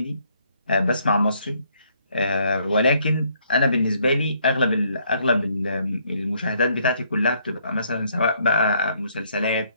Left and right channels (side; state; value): both; inverted; correlation -0.69